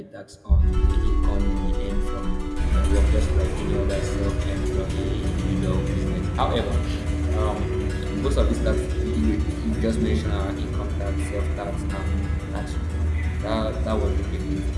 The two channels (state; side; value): identical; both; correlation 1.00